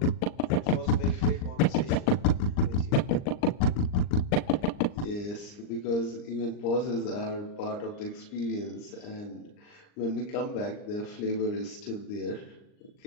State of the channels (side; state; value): right; late; 39 ms